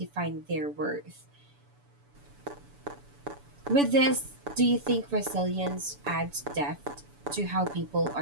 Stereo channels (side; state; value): left; late; 7.0 ms